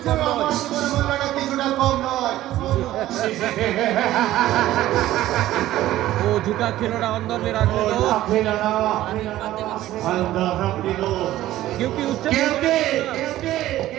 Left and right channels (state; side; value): quieter; left; 14.6 dB